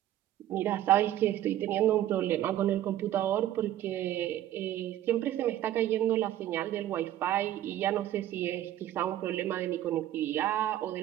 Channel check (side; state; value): left; quieter; 12.8 dB